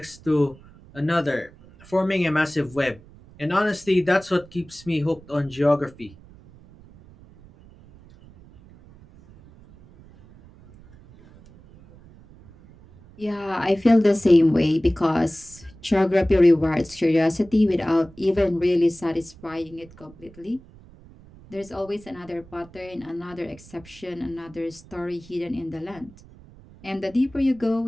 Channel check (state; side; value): noise; right; rumble, 23 dB below the sound